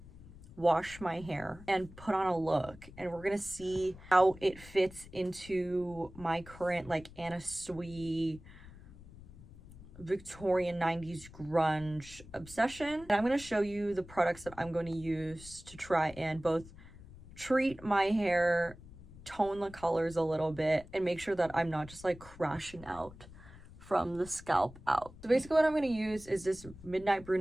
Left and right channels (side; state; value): left; noise; rumble, 18 dB below the sound